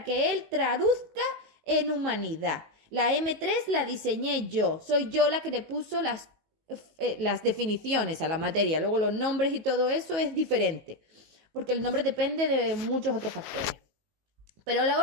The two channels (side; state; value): left; late; 18 ms